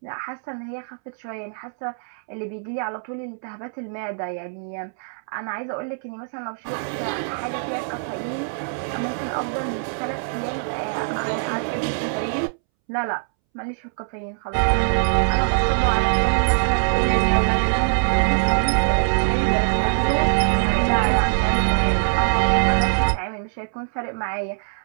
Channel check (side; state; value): left; silent; 63 dB below the other